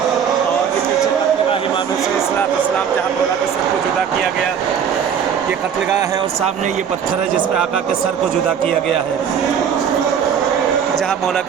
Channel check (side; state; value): left; quieter; 7.8 dB